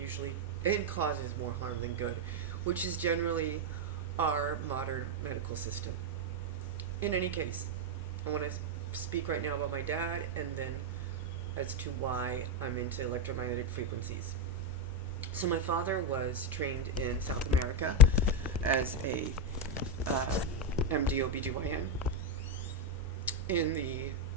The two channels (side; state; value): both; normal; correlation 0.05